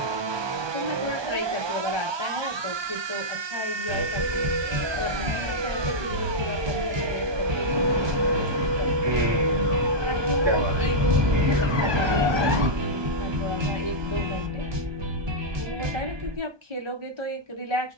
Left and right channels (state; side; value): late; left; 1.2 ms